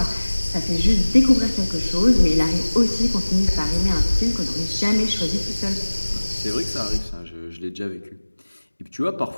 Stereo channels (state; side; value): inverted; both; correlation -1.00